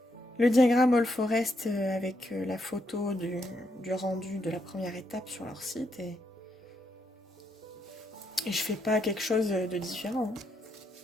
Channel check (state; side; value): normal; both; correlation 0.79